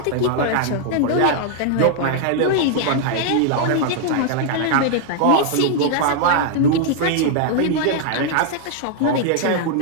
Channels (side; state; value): both; different; correlation 0.00